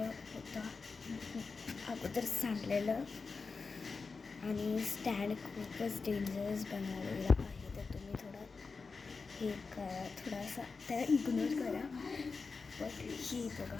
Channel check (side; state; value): right; quieter; 4.5 dB